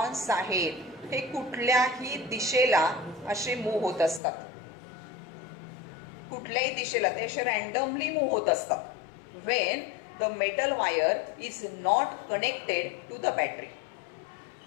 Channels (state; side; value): drops out; right; at 4.2 s